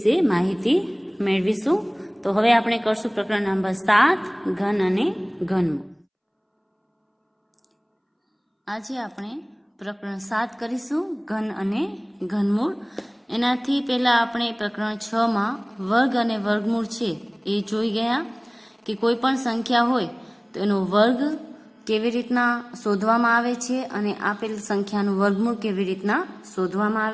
માહિતી મેળવીશું. તો હવે આપણે કરશું પ્રકરણ નંબર 7 ઘન અને ઘનમૂળ. આજે આપણે પ્રકરણ 7 કરીશું ઘન અને ઘનમૂળ. એનાથી પહેલાં આપણે પ્રકરણ 6માં વર્ગ અને વર્ગમૂળ છે એ જોઈ ગયા કે કોઈ પણ સંખ્યા હોય તો એનો વર્ગ કેવી રીતના શોધવામાં આવે છે અને આપેલ સંખ્યાનું વર્ગમૂળ કેવી રીતના શોધવામાં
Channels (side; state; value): both; identical; correlation 1.00